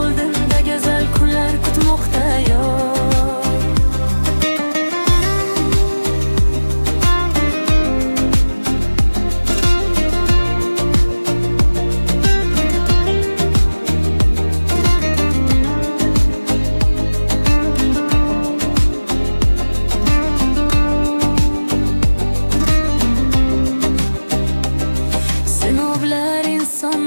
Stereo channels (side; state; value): both; inverted; correlation -1.00